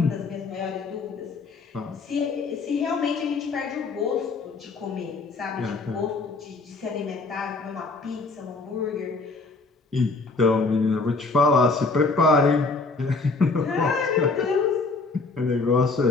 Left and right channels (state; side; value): quieter; right; 3.8 dB